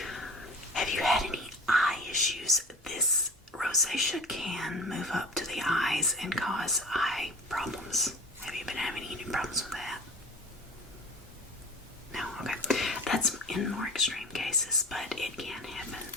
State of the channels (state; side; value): normal; both; correlation 0.38